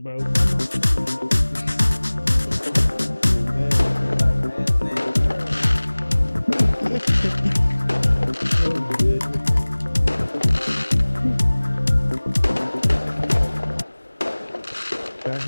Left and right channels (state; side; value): inverted; both; correlation -1.00